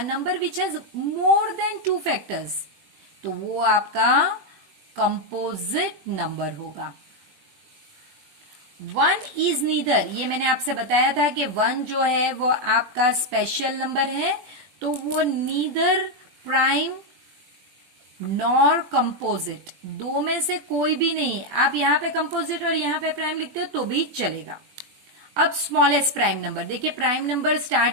number which has more than 2 factors, तो वो आपका कंपोजिट नंबर होगा। 1 इज नीदर, ये मैंने आपसे बताया था कि 1 जो है वो आपका स्पेशल नंबर है, तो वो नीदर प्राइम नॉर कंपोजिट, दो में से कोई भी नहीं है। आप यहां पे कंपोजिट और यहां पे प्राइम लिखते हो तो भी चलेगा। अब स्मॉलेस्ट प्राइम नंबर, देखिए प्राइम नंबर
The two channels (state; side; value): late; left; 20 ms